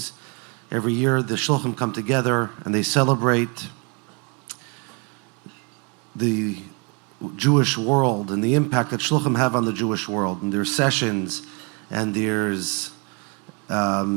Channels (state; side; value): quieter; left; 33.0 dB